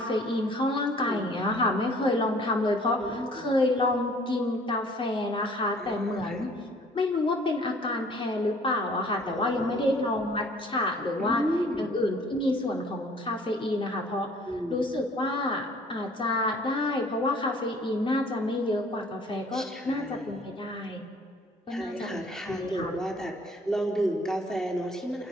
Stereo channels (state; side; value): normal; both; correlation 0.55